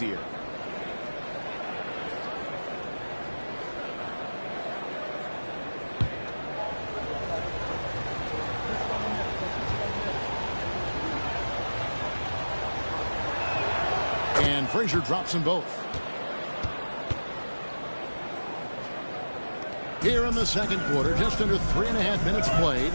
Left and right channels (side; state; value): both; inverted; correlation -1.00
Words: And Frazier drops them both. Here in the second quarter, just under 3.5 minutes played.